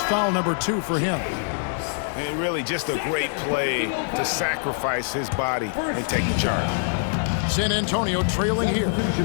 foul number 2 for him. And really just a great play to sacrifice his body and take the charge. San Antonio trailing here.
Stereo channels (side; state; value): right; silent; digital silence